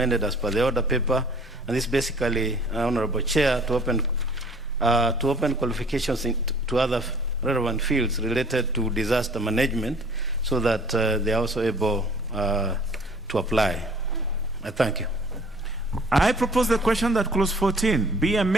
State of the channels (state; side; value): normal; both; correlation 0.52